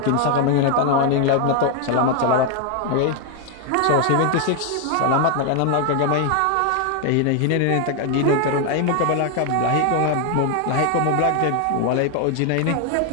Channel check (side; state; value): both; different; correlation 0.01